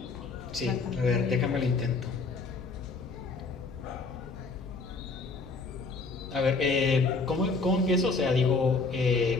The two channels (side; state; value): right; quieter; 4.0 dB